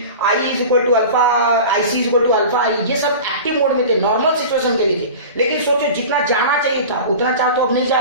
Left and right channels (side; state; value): both; inverted; correlation -0.34